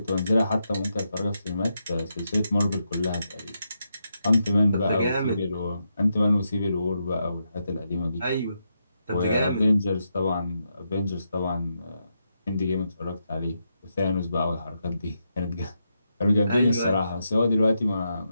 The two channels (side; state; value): both; inverted; correlation -0.83